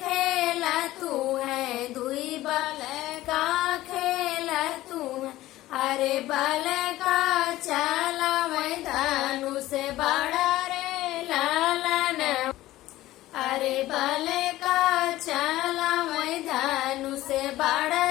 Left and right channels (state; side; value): quieter; right; 16.1 dB